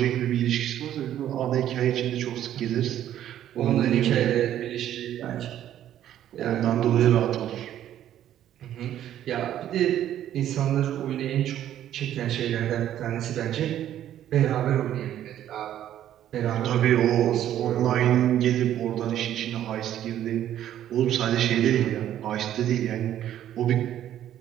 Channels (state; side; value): quieter; left; 11.5 dB